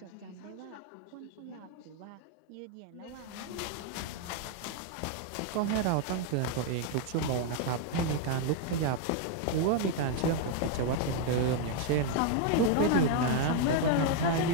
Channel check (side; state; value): both; different; correlation 0.00